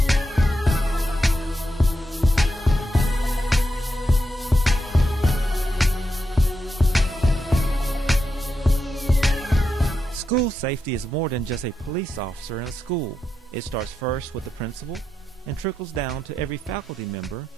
School safety is more than just a police officer in a school. It starts first with the principal and trickles down to every faculty member,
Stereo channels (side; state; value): both; normal; correlation 0.85